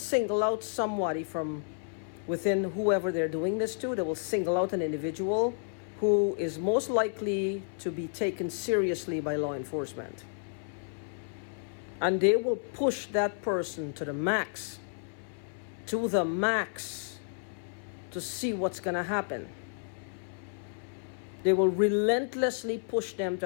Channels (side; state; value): right; silent; 57 dB below the other